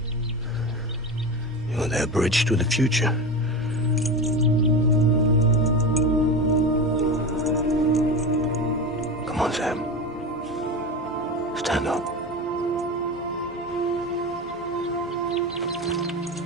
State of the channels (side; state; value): both; normal; correlation 0.24